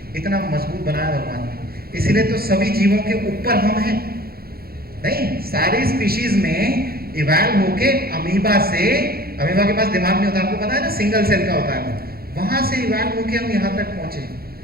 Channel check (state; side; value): late; left; 0.44 ms